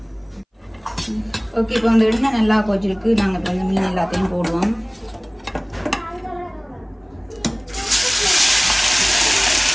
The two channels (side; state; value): both; identical; correlation 1.00